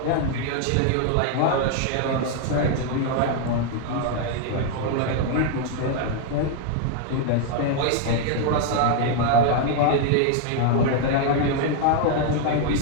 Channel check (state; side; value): different; both; correlation 0.00